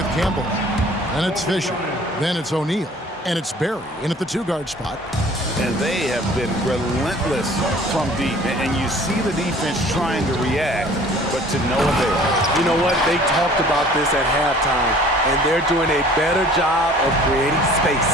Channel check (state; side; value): normal; both; correlation 0.50